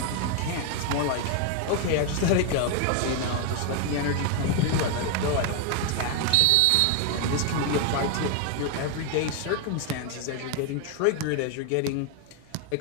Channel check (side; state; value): both; different; correlation 0.01